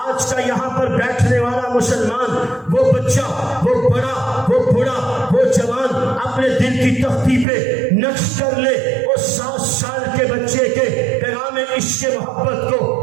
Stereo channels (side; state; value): left; drops out; at 7.5 s